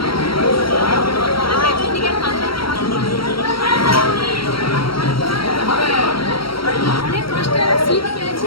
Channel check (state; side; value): late; right; 0.74 ms